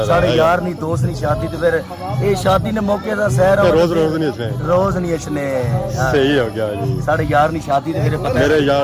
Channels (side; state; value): both; identical; correlation 1.00